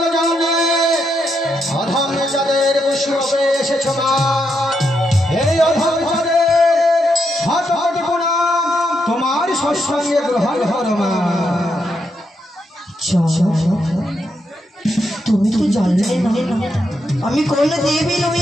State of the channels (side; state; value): both; normal; correlation 0.81